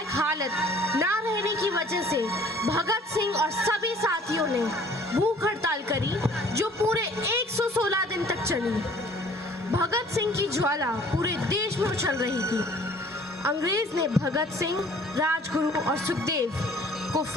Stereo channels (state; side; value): normal; both; correlation 0.54